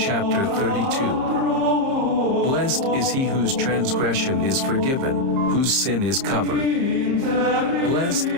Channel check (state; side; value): late; left; 30 ms